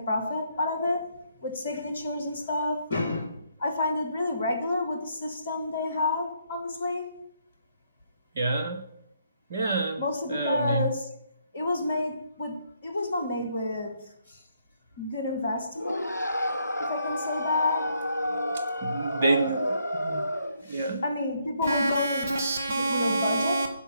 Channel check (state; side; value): inverted; both; correlation -0.73